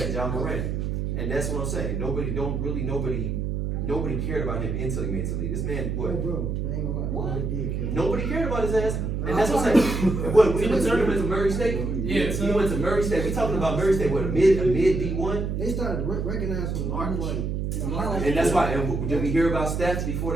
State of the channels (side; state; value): right; noise; hum, 1 dB below the sound